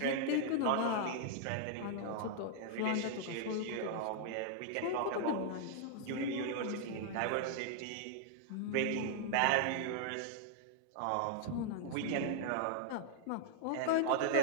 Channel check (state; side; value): different; both; correlation -0.01